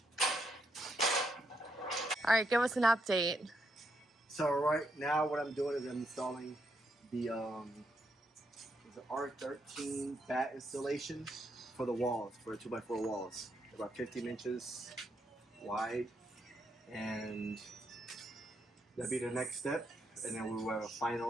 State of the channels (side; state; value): both; normal; correlation 0.78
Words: All right, give us an update. So right now, what I'm doing is I'm installing the R13 bat installation for the walls, for the 2x4 walls. They're about 15 inches wide, and that'll be the next step. And then we will have a